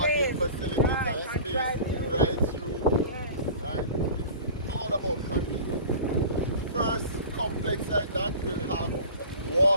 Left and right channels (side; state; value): both; inverted; correlation -0.39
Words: facilities and space right through. Right? It's all about convenience. First complex like that will have